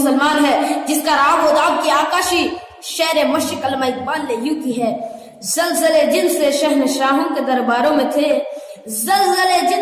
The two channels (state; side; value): identical; both; correlation 1.00